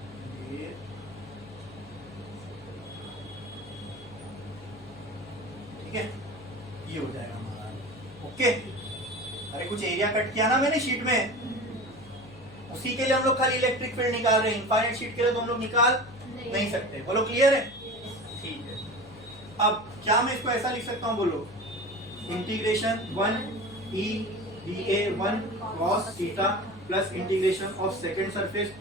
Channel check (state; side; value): noise; left; hum, 20 dB below the sound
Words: ठीक है, ये हो जाएगा हमारा। ओके, अरे कुछ एरिया कट किया ना मैंने शीट में, उसी के लिए हम लोग खाली इलेक्ट्रिक फील्ड निकाल रहे हैं। इनफाइनाइट शीट के लिए तो हम लोग निकाल नहीं सकते। बोलो क्लियर है? ठीक है। अब क्या मैं इसको ऐसा लिख सकता हूँ? बोलो integration 1 E D A 1 cos theta plus integration of second surface